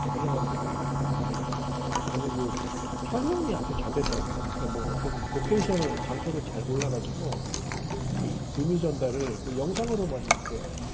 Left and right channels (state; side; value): identical; both; correlation 1.00